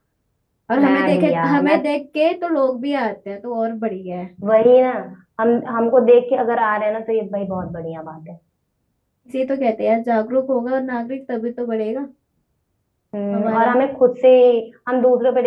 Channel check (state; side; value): identical; both; correlation 1.00